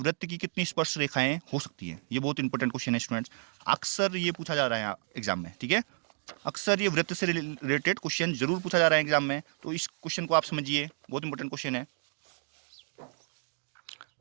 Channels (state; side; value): silent; left; digital silence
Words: की कितनी स्पर्श रेखाएं हो सकती है। ये बहुत इंपॉर्टेंट क्वेश्चन है स्टूडेंट्स, अक्सर ये पूछा जा रहा है एग्जाम में। ठीक है, अक्सर ये वृत्त से रिलेटेड क्वेश्चन जरूर पूछा जा रहा है एग्जाम में, तो इस क्वेश्चन को आप समझिए, बहुत इंपॉर्टेंट क्वेश्चन है।